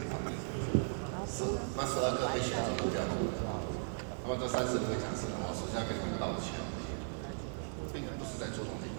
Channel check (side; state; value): left; silent; digital silence